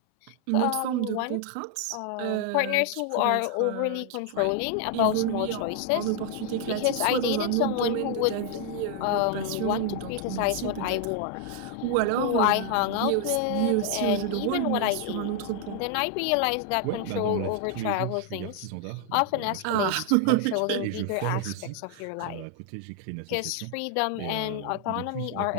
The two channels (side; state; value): both; different; correlation 0.00